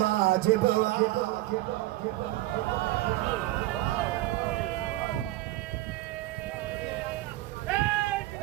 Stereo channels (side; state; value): left; quieter; 17.2 dB